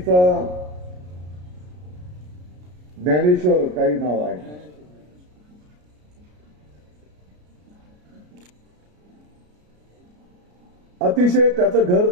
ज्ञानेश्वर काही नाव आहे, अतिशय त्याचं घर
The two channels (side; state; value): left; late; 33 ms